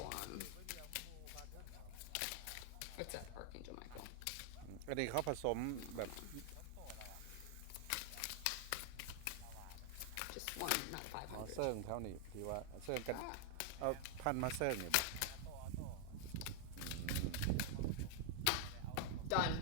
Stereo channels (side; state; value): both; different; correlation 0.00